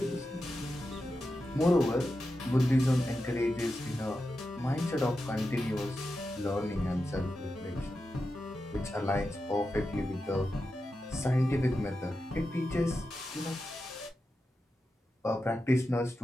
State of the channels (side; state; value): both; normal; correlation 0.90